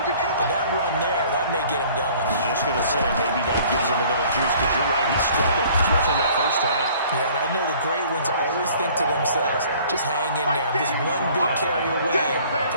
but that run there, that may get him going. I was just going to say, maybe that gives him a little juice, because you're right, he struggled, especially in that first half. Yeah, and I know the great ones always think to themselves, just hang in there. I'm just one big carry away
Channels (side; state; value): both; inverted; correlation -0.53